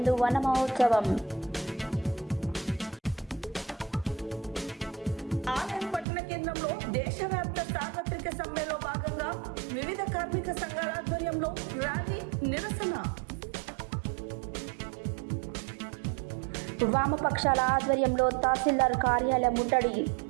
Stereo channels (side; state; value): left; drops out; at 6.1 s